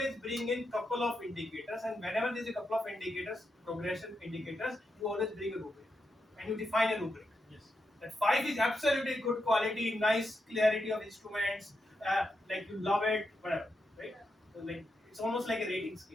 bring in couple of indicators, and whenever there is a couple of indicators, progression indicators, you always bring a rubric, and you define a rubric. Yes. That 5 is absolutely good quality, nice clarity of instruments, like you love it, whatever, right? So like it's almost like a rating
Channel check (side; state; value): both; normal; correlation 0.85